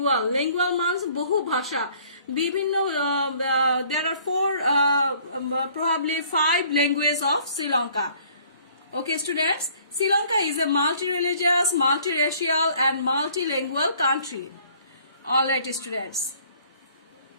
means বহু ভাষা, বিভিন্ন there are probably 5 languages of Sri Lanka. Okay, students, Sri Lanka is a multi-religious, multi-racial and multilingual country. All right, students.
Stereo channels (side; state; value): both; inverted; correlation -0.57